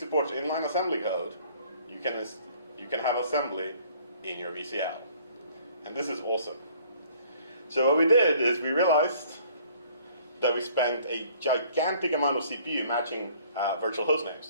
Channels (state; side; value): inverted; both; correlation -0.57